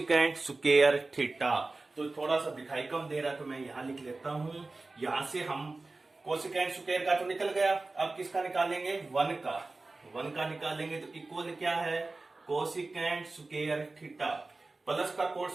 स्क्वायर थीटा। तो थोड़ा सा दिखाई कम दे रहा है तो मैं यहां लिख लेता हूं। यहां से हम कोसिकेंट स्क्वायर का तो निकल गया, अब किसका निकालेंगे? 1 का। 1 का निकालेंगे तो इक्वल क्या है? कोसिकेंट स्क्वायर थीटा प्लस का कोट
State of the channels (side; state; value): left; quieter; 3.4 dB